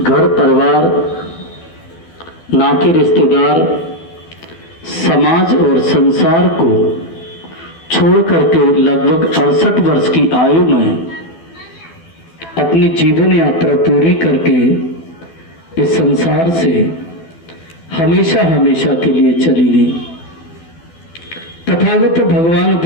परिवार, नाते रिश्तेदार, समाज और संसार को छोड़ करके लगभग 68 वर्ष की आयु में अपनी जीवन यात्रा पूरी करके इस संसार से हमेशा हमेशा के लिए चली गई। तथागत भगवान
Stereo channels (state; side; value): late; right; 12 ms